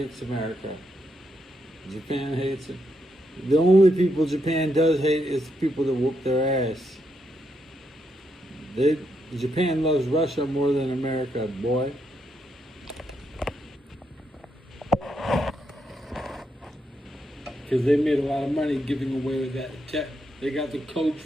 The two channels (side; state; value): both; normal; correlation 0.80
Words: America. Japan hates it. The only people Japan does hate is the people that whoop their ass. Japan loves Russia more than America, boy. Because they made a lot of money giving away that they got the code